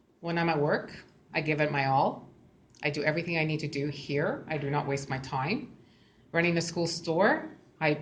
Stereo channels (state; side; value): identical; both; correlation 1.00